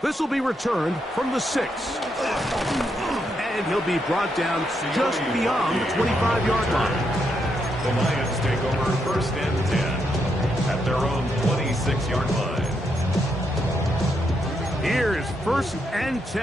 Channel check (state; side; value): normal; both; correlation 0.80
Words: This will be returned from the 6. And he'll be brought down just beyond the 25-yard line. The Lions take over 1st and 10 at their own 26-yard line. Here's 1st and